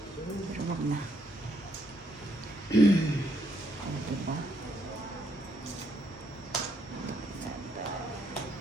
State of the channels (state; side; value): normal; both; correlation 0.74